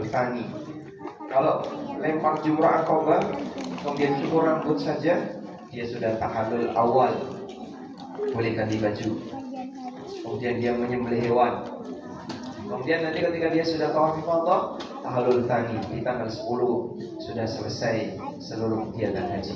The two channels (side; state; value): both; identical; correlation 1.00